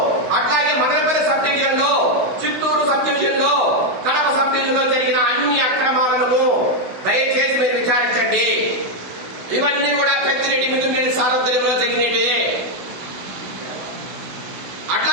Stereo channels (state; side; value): late; left; 16 ms